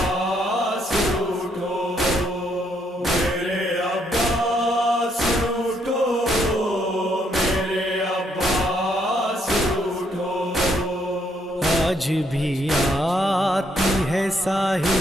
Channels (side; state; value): both; normal; correlation 0.72